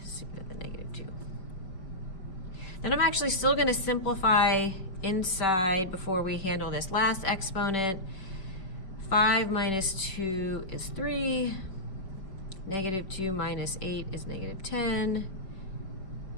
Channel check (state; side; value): late; right; 5.1 ms